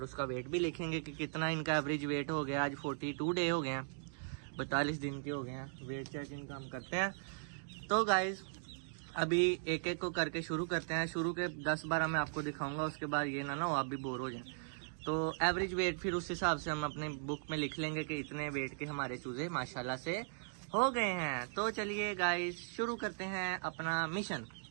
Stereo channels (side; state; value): left; silent; digital silence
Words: उसका वेट भी लिखेंगे कि कितना इनका एवरेज वेट हो गया। आज 42 डे हो गए हैं, 42 दिन के हो गए हैं। वेट चेक इनका हम करते हैं। तो गाइज अभी एक एक को करके शुरू करते हैं। शुरू के 10-12 मैं आपको दिखाऊंगा, उसके बाद ये ना हो आप भी बोर हो जाएं। तो एवरेज वेट फिर उस हिसाब से हम अपने बुक में लिख लेंगे कि इतने वेट के हमारे चूजे माशाल्लाह से हो गए हैं। तो चलिए गाइज शुरू करते हैं अपना मिशन।